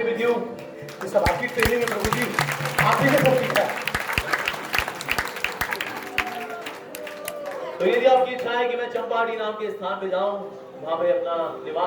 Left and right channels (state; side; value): identical; both; correlation 1.00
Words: with you. ये सब आपकी ट्रेनिंग है प्रभु जी, आप ही ने सब सीखा है। तो यदि आपकी इच्छा है कि मैं चंपाहाटी नाम के स्थान पे जाऊं, वहां पे अपना